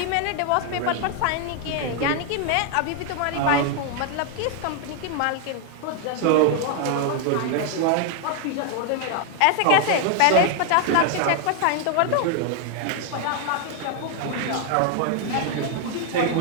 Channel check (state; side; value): different; both; correlation 0.00